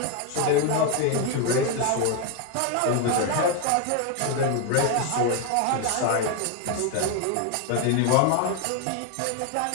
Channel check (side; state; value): both; different; correlation 0.01